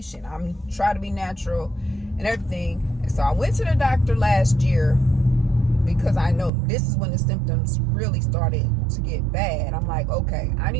I'm trying to be natural and everything. And so I went to the doctor last year because I know this is when the symptoms really started to get bad. I'm like, okay, I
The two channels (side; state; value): left; drops out; at 6.5 s